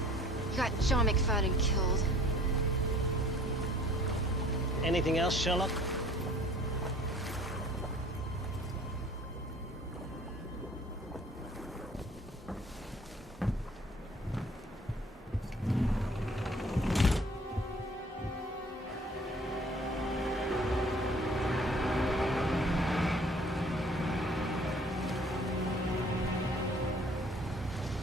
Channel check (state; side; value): normal; both; correlation 0.53